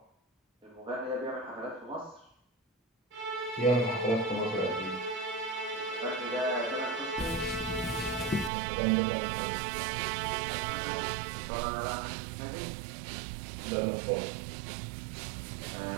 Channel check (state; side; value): drops out; left; at 8.5 s